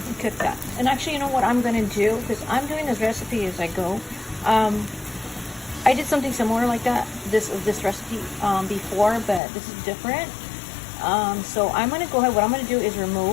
And cook that. And actually, you know what I'm going to do, because I'm doing this recipe as I go. I did something similar like that, this recipe before, but this is different. So I'm going to go ahead, what I'm going to do is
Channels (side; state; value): right; drops out; at 9.4 s